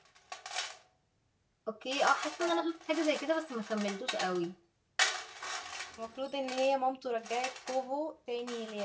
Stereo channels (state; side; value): identical; both; correlation 1.00